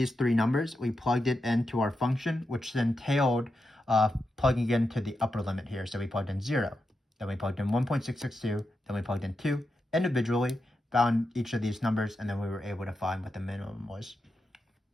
3 numbers, we plugged it into our function, which then entailed plugging into the upper limit here. So we plugged in 0, then we plugged in 1.662, then we plugged in 2 individually, found each of these numbers, and then we were able to find what the minimum was.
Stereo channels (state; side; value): normal; both; correlation 0.88